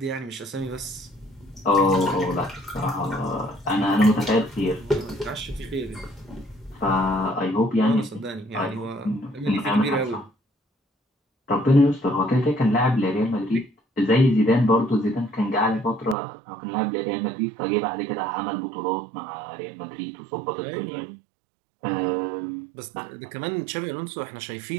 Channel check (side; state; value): left; drops out; at 16.2 s